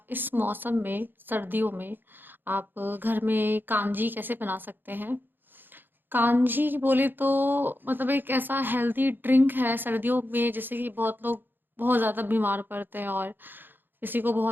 इस मौसम में, सर्दियों में, आप घर में कांजी कैसे बना सकते हैं। कांजी बोले तो मतलब एक ऐसा हेल्दी ड्रिंक है सर्दियों में, जैसे कि बहुत लोग बहुत ज़्यादा बीमार पड़ते हैं और किसी को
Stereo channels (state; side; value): late; left; 0.095 ms